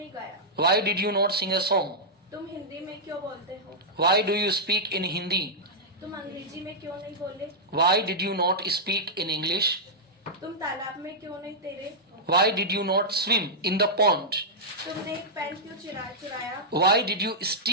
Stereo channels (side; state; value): both; normal; correlation -0.09